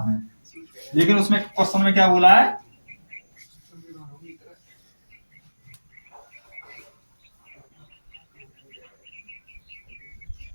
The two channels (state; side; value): inverted; both; correlation -1.00